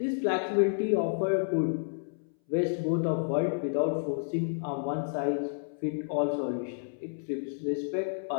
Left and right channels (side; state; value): right; silent; 58 dB below the other